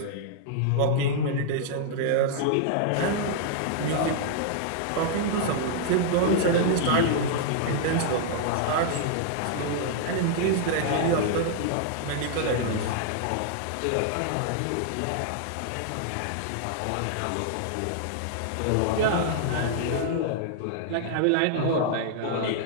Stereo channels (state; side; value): different; both; correlation -0.01